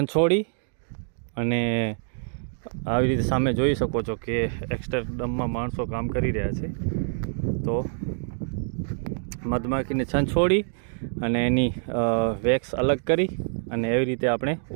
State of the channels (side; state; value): left; silent; digital silence